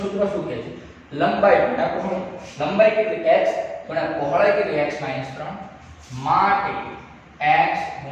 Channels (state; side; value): identical; both; correlation 1.00